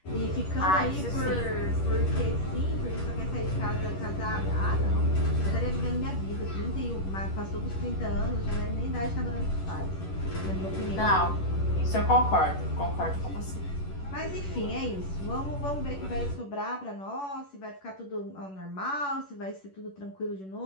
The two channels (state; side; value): late; right; 11 ms